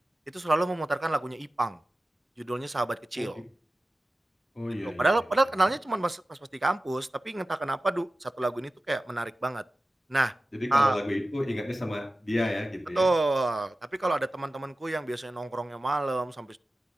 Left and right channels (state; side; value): normal; both; correlation 0.95